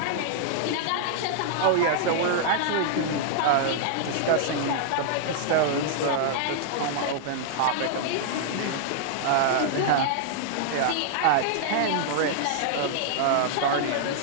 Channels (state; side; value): different; both; correlation -0.01